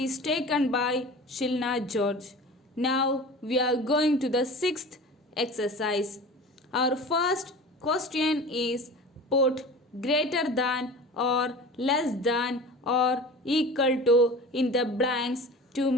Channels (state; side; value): normal; both; correlation 0.37